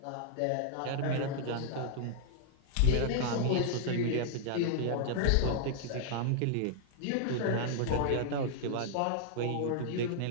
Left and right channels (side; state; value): both; different; correlation -0.01